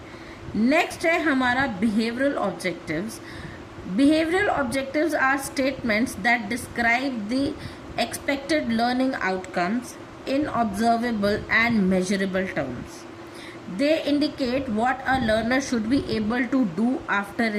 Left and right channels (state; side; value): identical; both; correlation 1.00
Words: नेक्स्ट है हमारा behavioural objectives. Behavioural objectives are statements that describe the expected learning outcomes in observable and measurable terms. They indicate what a learner should be able to do after